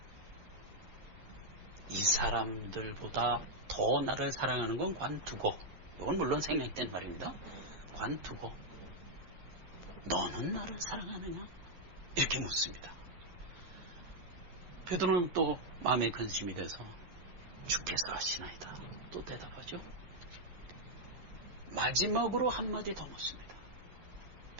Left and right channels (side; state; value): left; late; 11 ms